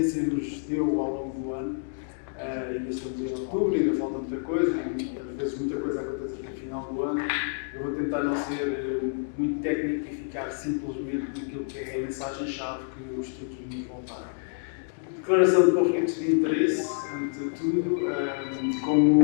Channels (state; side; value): silent; right; digital silence